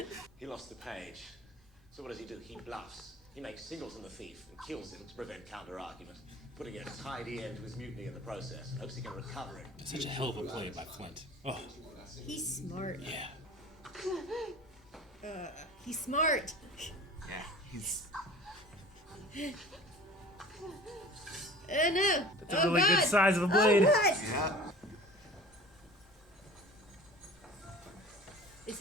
He lost the page. So what does he do? He bluffs. He makes Singleton the thief and kills him to prevent counter-argument, putting a tidy end to his mutiny in the process, and hopes he can recover it. Such a hell of a play by Flint. Oh. He's smart. Yeah. He's smart. Yeah, he's. No. That's a really good size of a blade. Oh, God. Yeah. Is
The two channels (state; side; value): normal; both; correlation 0.42